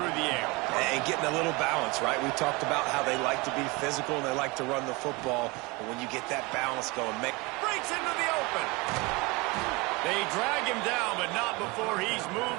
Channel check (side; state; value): left; quieter; 25.5 dB